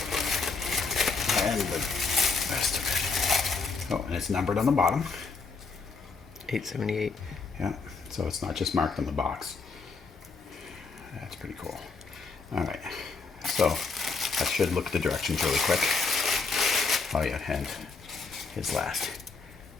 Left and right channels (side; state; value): right; quieter; 4.4 dB